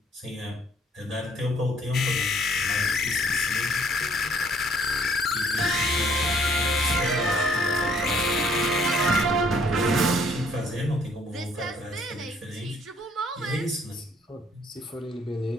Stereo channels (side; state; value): both; normal; correlation 0.63